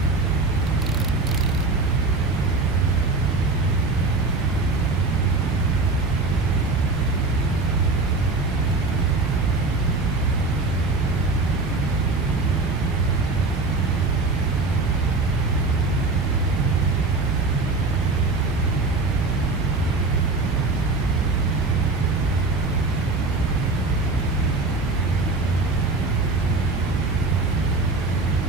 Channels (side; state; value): left; quieter; 3.5 dB